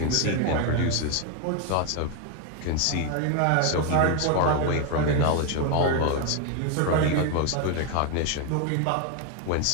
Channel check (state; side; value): different; both; correlation 0.01